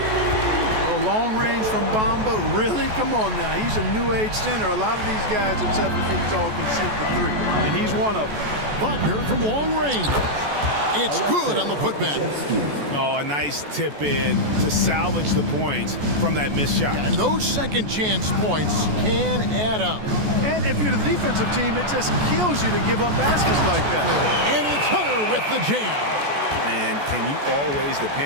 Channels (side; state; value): left; late; 14 ms